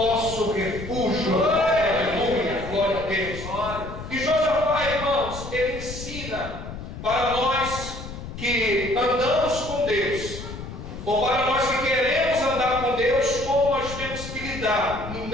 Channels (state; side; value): noise; left; rumble, 10 dB below the sound